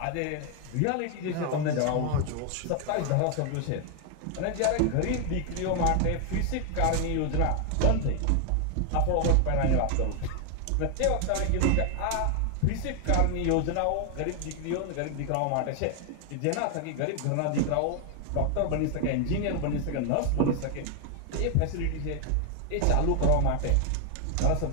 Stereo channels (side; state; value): both; different; correlation 0.00